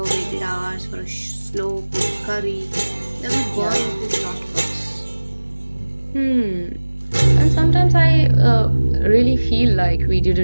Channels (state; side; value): inverted; both; correlation -1.00